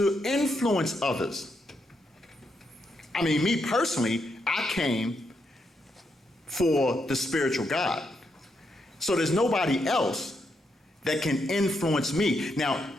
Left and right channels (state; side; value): normal; both; correlation 0.80